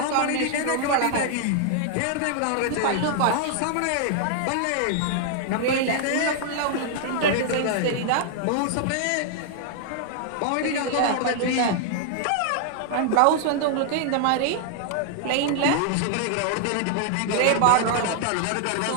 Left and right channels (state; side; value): different; both; correlation -0.01